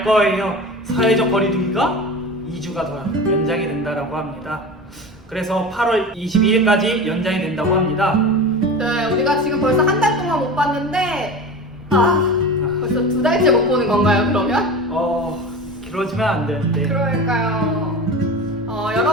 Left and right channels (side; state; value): both; normal; correlation 0.31